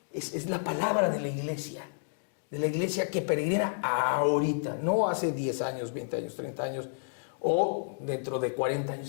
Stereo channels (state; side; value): silent; right; digital silence